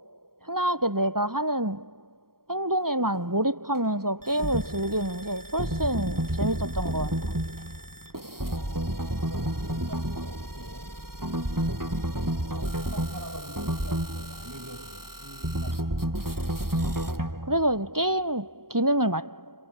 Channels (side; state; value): left; late; 0.93 ms